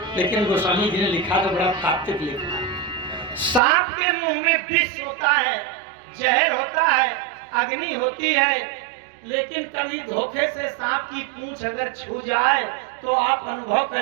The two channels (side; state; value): left; drops out; at 3.6 s